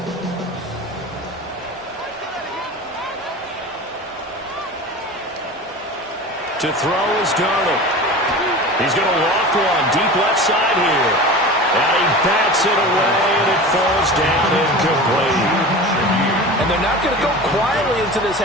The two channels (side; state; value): both; normal; correlation 0.34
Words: To throw is Darnold. He's going to loft one deep left side here. And he bats it away, and it falls down incomplete. And they're not going to go quietly into this